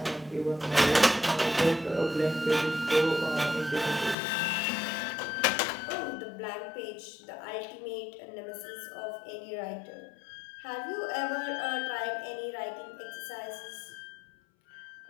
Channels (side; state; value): right; drops out; at 4.2 s